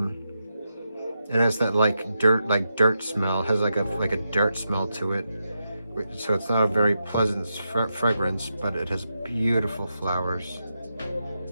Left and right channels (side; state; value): both; inverted; correlation -0.87